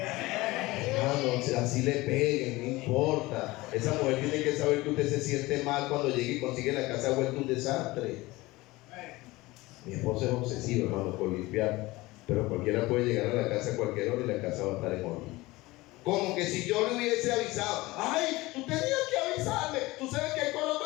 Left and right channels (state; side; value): quieter; right; 20.4 dB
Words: así le peguen, no importa. Esa mujer tiene que saber que usted se siente mal cuando llegue y consigue la casa vuelta un desastre. Mi esposo es obsesivo, hermano, por limpiar, pero cualquiera puede llegar a la casa a cualquier hora y la casa va a estar en orden. Como que si yo le hubiese avisado: ay, tú tenías que avisarme, tú sabes que hay coloto